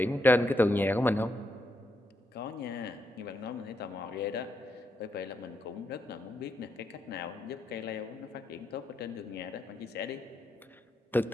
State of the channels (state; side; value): normal; both; correlation 0.80